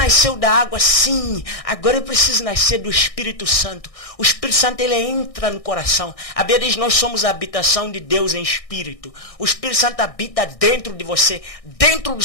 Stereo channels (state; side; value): late; right; 1.6 ms